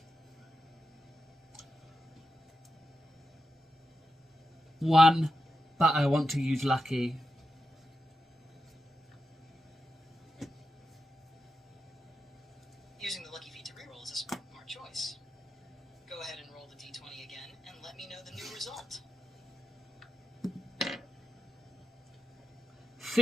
One, but I want to use lucky. Using the lucky feat to reroll is a smart choice. Go ahead and roll the d20 again and let me know the new result.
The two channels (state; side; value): normal; both; correlation 0.89